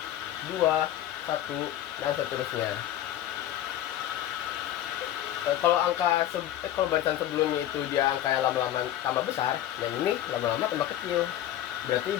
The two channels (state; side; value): quieter; right; 12.4 dB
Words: 2, 1, dan seterusnya. Kalau kalau barisan sebelumnya itu dia angka yang lama-lama tambah besar, yang ini lama-lama tambah kecil. Berarti